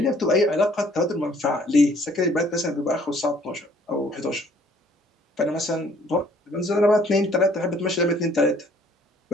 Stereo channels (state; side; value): normal; both; correlation 0.60